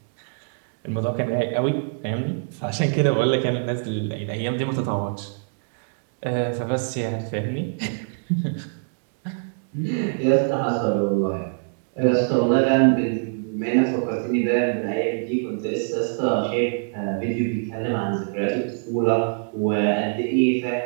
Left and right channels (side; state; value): left; silent; digital silence